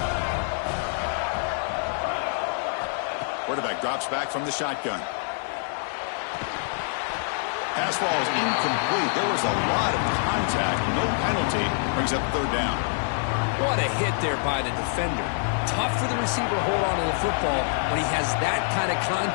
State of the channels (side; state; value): right; silent; digital silence